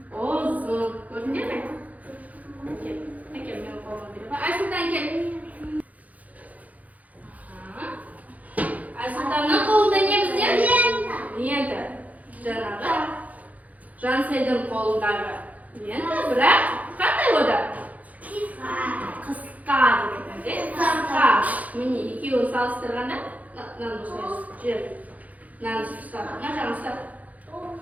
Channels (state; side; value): late; left; 0.075 ms